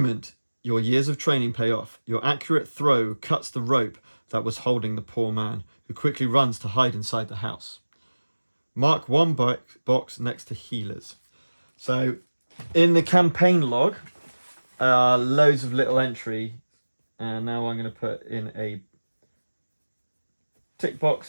your years of training pay off. Your accurate throw cuts the rope that was holding the poor man, who quickly runs to hide inside the house. Mark 1 box next to healers. So in the campaign log, loads of little entry. And now I'm going to put in a tick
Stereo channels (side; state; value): both; inverted; correlation -1.00